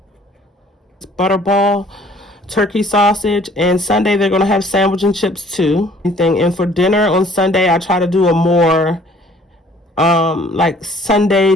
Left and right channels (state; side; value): normal; both; correlation 0.56